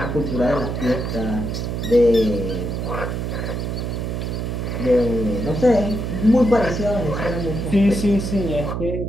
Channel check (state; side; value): noise; right; hum, 3 dB below the sound